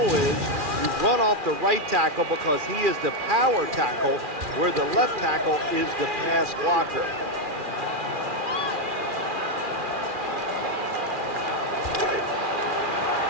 is you run off the right tackle because he is the power tackle, where the left tackle is the pass blocker.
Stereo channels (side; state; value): left; late; 2.4 ms